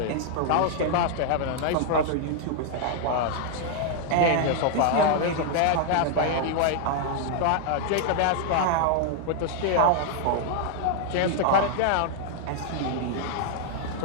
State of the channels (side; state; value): both; different; correlation 0.00